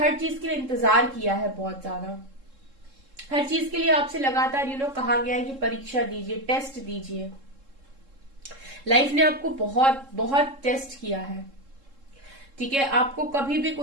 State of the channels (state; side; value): late; left; 3.7 ms